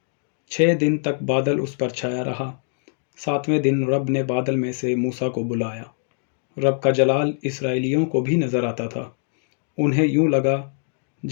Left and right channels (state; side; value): silent; right; digital silence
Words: 6 دن تک بادل اس پر چھایا رہا۔ 7ویں دن رب نے بادل میں سے موسیٰ کو بلایا۔ رب کا جلال اسرائیلیوں کو بھی نظر آتا تھا۔ انہیں یوں لگا